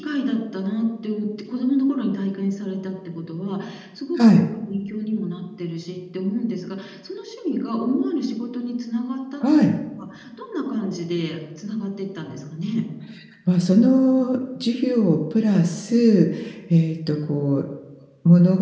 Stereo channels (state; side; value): identical; both; correlation 1.00